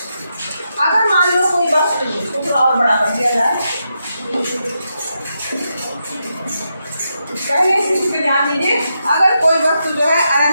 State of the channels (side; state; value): both; inverted; correlation -0.84